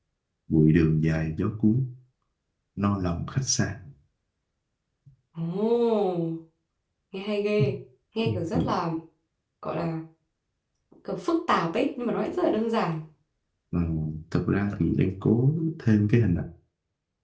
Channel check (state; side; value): identical; both; correlation 1.00